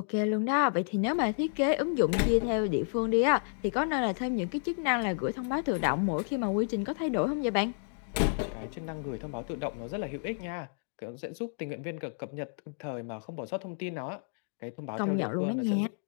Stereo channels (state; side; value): silent; right; digital silence